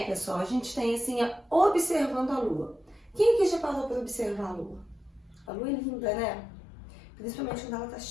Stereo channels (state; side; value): drops out; right; at 5.5 s